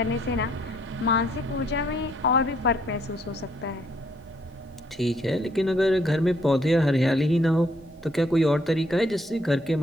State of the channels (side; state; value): both; normal; correlation 0.67